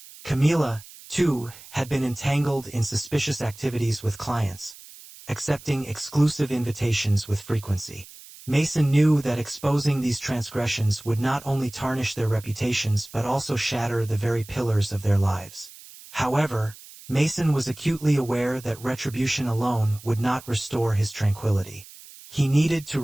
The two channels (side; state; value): right; noise; hiss, 19 dB below the sound